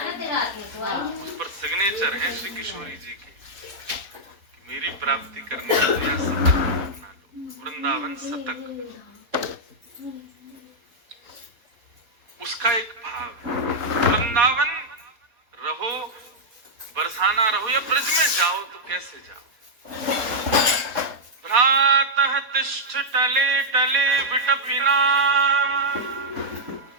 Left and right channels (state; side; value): late; left; 4.2 ms